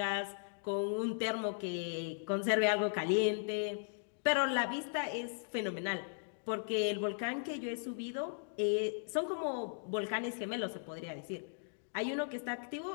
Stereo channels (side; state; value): right; silent; digital silence